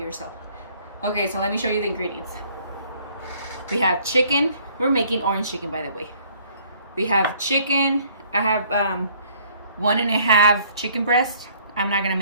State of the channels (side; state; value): both; inverted; correlation -0.59